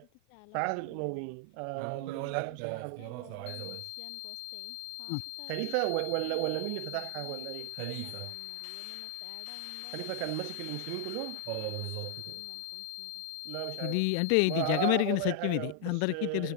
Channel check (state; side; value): different; both; correlation 0.00